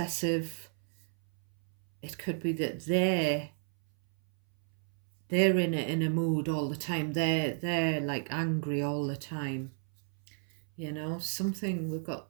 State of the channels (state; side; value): silent; left; 57 dB below the other